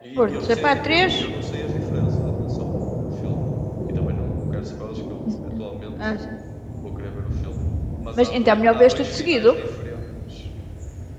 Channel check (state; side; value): identical; both; correlation 1.00